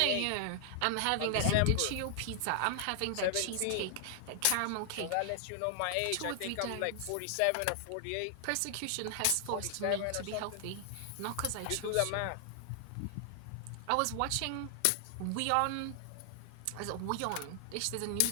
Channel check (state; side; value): different; both; correlation 0.00